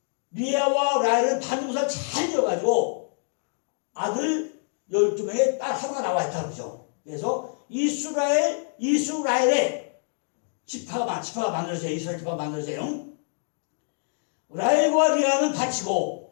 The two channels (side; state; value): right; silent; digital silence